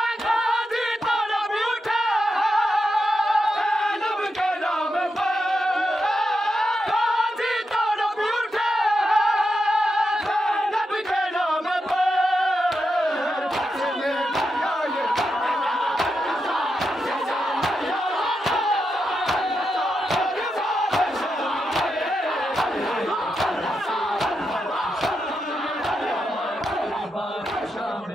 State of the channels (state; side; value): normal; both; correlation 0.86